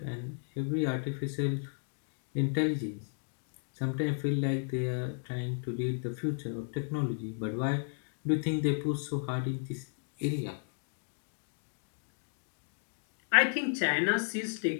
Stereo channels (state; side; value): silent; right; digital silence